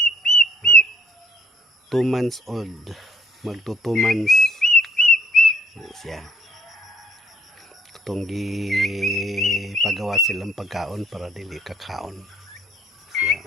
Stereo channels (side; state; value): both; normal; correlation 0.63